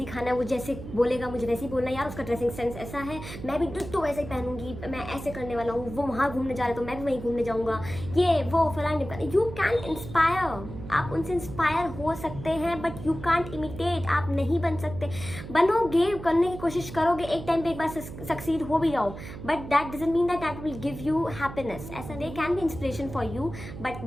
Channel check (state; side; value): noise; right; hum, 11 dB below the sound